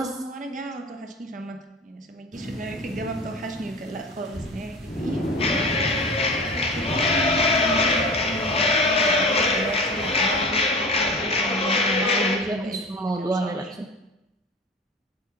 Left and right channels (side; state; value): both; normal; correlation 0.34